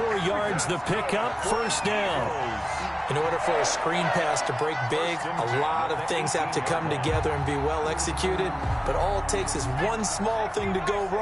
yards the pickup, 1st down. In order for a screen pass to break big, a lot of things have to come together and be well executed. But all it takes is one small thing to go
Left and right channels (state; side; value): identical; both; correlation 1.00